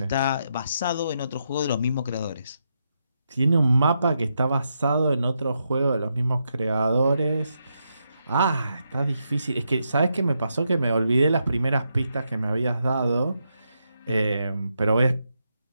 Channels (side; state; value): both; inverted; correlation -0.82